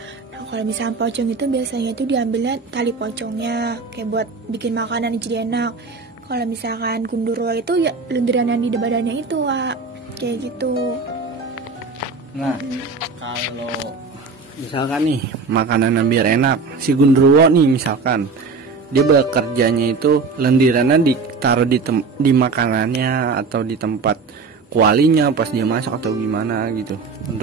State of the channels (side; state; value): left; quieter; 4.5 dB